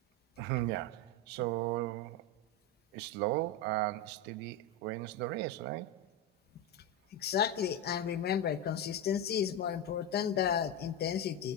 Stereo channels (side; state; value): both; normal; correlation 0.11